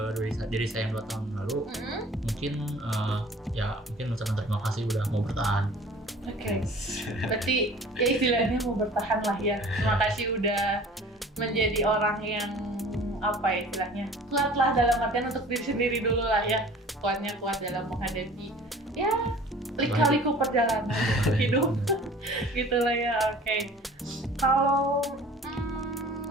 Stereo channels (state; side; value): normal; both; correlation 0.46